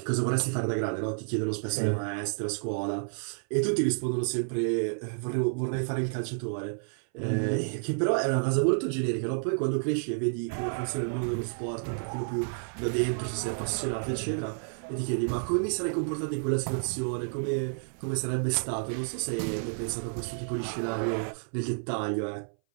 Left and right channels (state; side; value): silent; left; 58 dB below the other